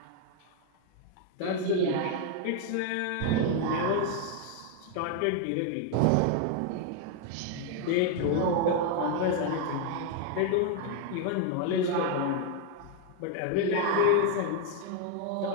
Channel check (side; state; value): both; different; correlation 0.00